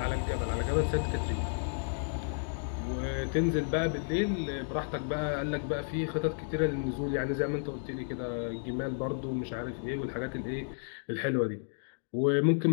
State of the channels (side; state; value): right; silent; digital silence